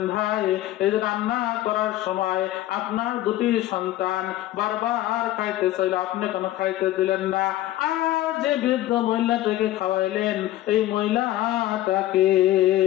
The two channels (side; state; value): right; quieter; 14.7 dB